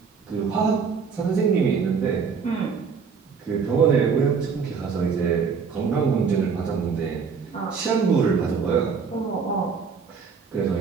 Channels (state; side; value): quieter; left; 5.7 dB